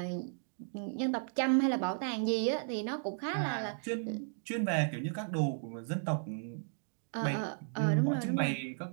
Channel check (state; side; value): silent; left; digital silence